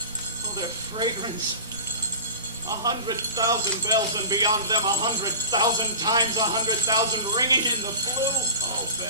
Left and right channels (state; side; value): inverted; both; correlation -0.35